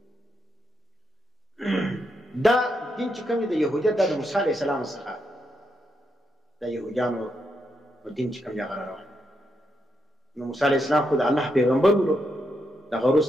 دا دین چې کوم دی د یهودیت د موسی علیه السلام څخه د یهودیانو دین چې کوم دی هغه روان. نو موسی علیه السلام خو د الله پیغمبر ولو. دغه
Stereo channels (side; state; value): both; normal; correlation 0.81